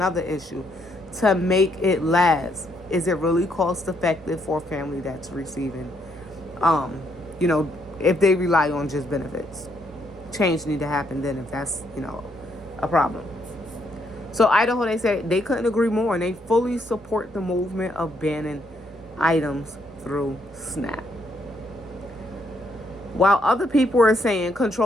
issue. To make it last. Is it really cost effective for a family that's receiving, you know, if they rely on just benefits? Change need to happen then if that's, a problem. So Idaho, they said they couldn't agree more, and they fully support the movement of banning items through SNAP. While other people are saying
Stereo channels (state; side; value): normal; both; correlation 0.73